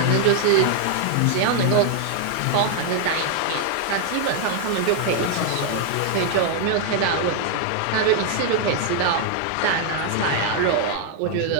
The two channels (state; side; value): different; both; correlation 0.00